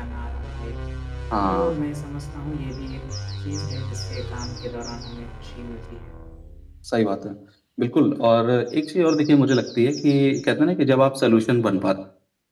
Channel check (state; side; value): identical; both; correlation 1.00